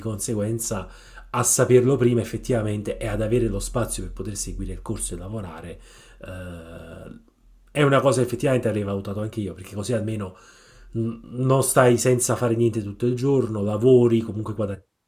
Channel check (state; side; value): identical; both; correlation 1.00